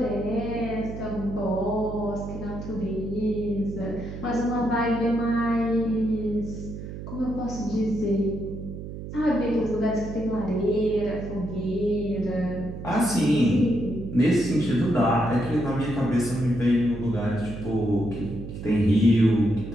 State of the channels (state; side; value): noise; right; hum, 9 dB below the sound